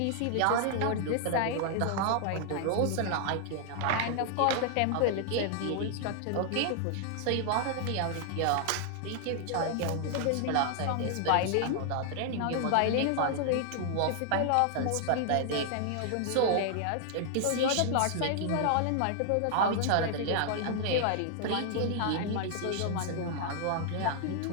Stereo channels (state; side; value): different; both; correlation 0.00